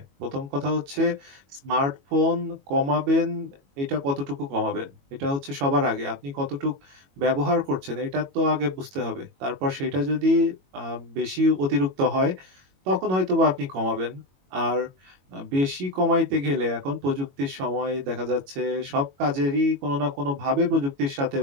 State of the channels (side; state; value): left; late; 22 ms